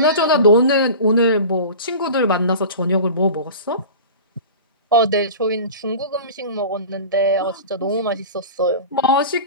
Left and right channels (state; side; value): inverted; both; correlation -0.35